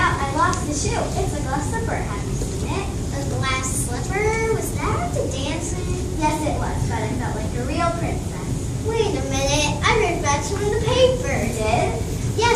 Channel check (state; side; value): identical; both; correlation 1.00